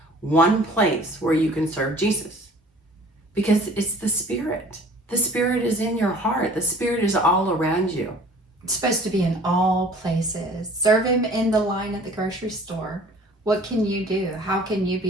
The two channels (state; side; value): normal; both; correlation 0.50